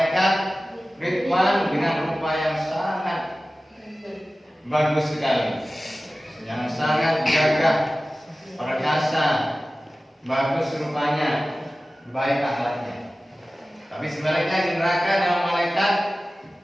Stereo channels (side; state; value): both; normal; correlation 0.96